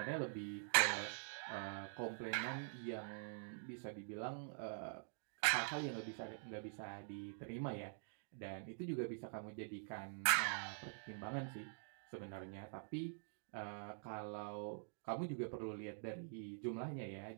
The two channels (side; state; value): left; silent; digital silence